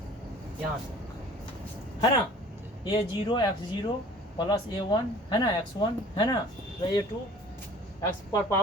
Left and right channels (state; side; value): normal; both; correlation 0.48